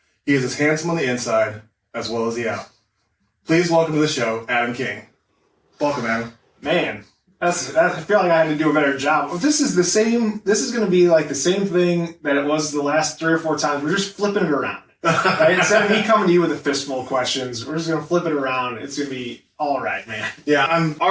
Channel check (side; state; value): both; identical; correlation 1.00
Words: He is as handsome on the inside as well as the out. Please welcome to the show, Adam King. Welcome, Adam. Man, I feel like I had to do a better job. Well, this is going to be like the same thing that it was the last 3 or 4 times. We're just flipping it around. Right? Instead of me coming to you with a fistful of questions, we're just going to flip it around. It's going to be all right, man. Yeah, I'm